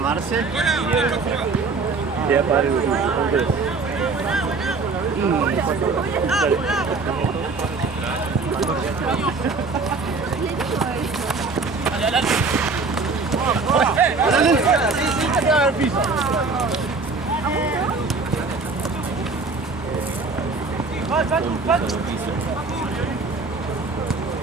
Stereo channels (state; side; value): quieter; left; 4.1 dB